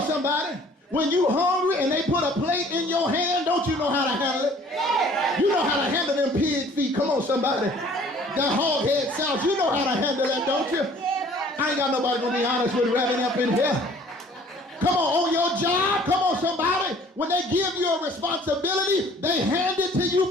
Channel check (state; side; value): normal; both; correlation 0.53